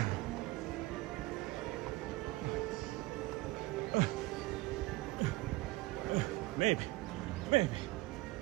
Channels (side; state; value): left; quieter; 20.4 dB